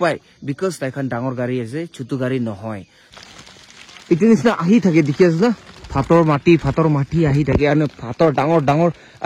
পায় বিকজ তাইখান ডাঙৰ গাড়ী আছে ছোট গাড়ী নহয় ইটো নিচিনা আহি থাকে দেখি আছে না ফাতর মাটি আহি থাকে আৰু ফাতৰ ডাঙৰ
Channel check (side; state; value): both; identical; correlation 1.00